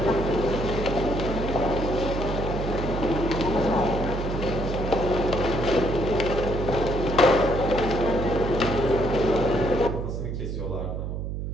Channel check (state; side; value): noise; right; hum, 4 dB below the sound